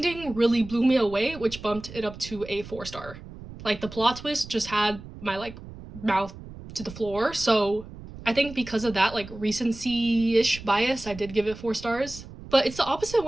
really blew me away, which bumped it up to a 4 star. Like, the plot twist just had my like mouth to the floor. So I think because of that like recency-ish bias, I did give it 4 stars. But it's the opposite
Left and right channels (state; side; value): noise; right; rumble, 15 dB below the sound